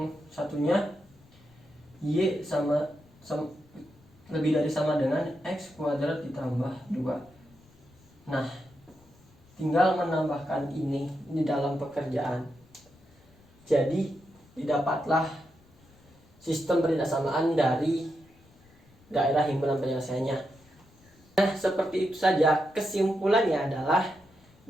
satunya y sama lebih dari sama dengan x kuadrat ditambah 2. Nah, tinggal menambahkan ini di dalam pekerjaan. Jadi didapatlah sistem pertidaksamaan dari daerah himpunan penyelesaiannya. Nah, seperti itu saja. Kesimpulannya adalah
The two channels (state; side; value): noise; left; rumble, 29 dB below the sound